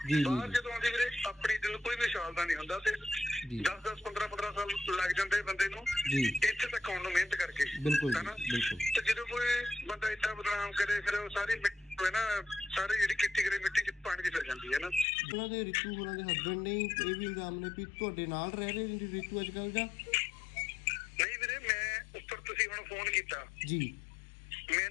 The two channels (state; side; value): drops out; right; at 15.1 s